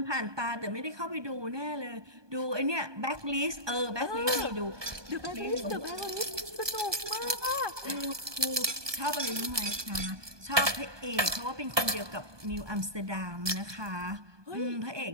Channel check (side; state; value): left; late; 1.2 ms